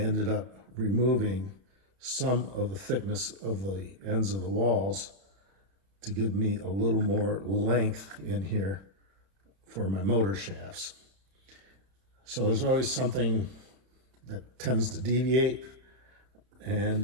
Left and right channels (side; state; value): left; late; 31 ms